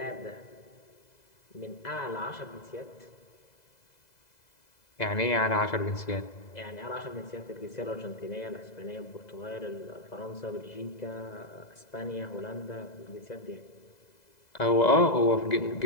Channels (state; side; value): late; right; 2.0 ms